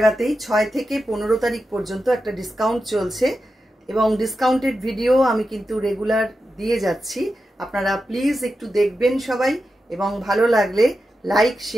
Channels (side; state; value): both; normal; correlation 0.90